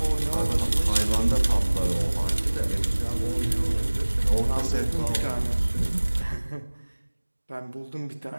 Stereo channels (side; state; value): both; inverted; correlation -1.00